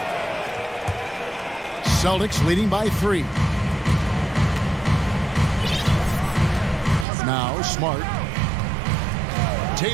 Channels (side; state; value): left; drops out; at 7.1 s